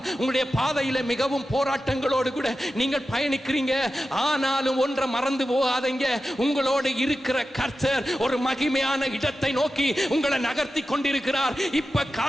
உங்களுடைய பாதையில் மிகவும் போராட்டங்களோடு கூட நீங்கள் பயணிக்கிறீங்க. ஆனாலும் ஒன்றை மறந்து போகாதீங்க, உங்களோடு இருக்கிற கர்த்தர் ஒரு மகிமையான இடத்தை நோக்கி உங்களை நகர்த்தி கொண்டிருக்கிறார். இப்ப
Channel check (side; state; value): both; normal; correlation 0.92